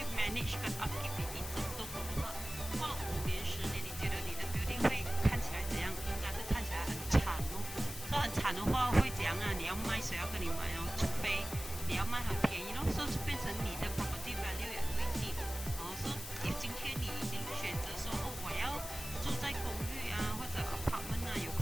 manage 跟 upkeep 你一整栋楼的话，过了5年10年，你觉得你的 building 会看起来怎样？应该是看起来很惨哦。说很惨的话会怎样啊？你要卖谁要跟你买哦？除非你要卖很便宜咯，所以变成你的 property value 也会低。说今天你已经选择说我要住在公寓啊或者 apartment 啊，有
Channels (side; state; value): left; noise; hiss, 10 dB below the sound